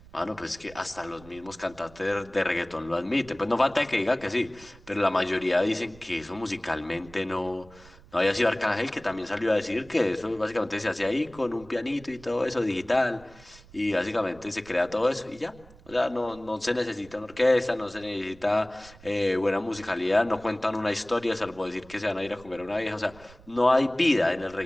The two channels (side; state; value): right; noise; rumble, 22 dB below the sound